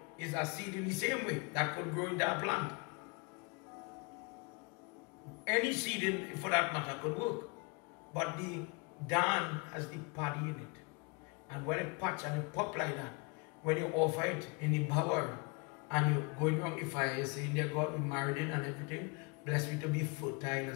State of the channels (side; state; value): right; quieter; 31.0 dB